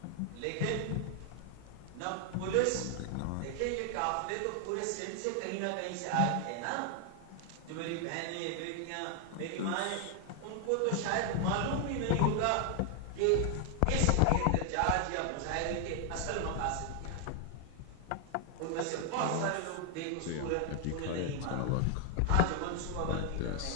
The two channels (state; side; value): different; both; correlation 0.00